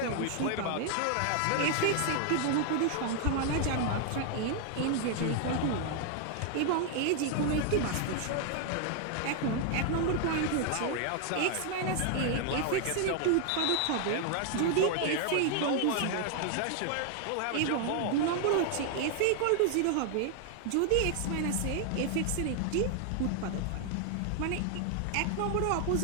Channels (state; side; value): different; both; correlation 0.00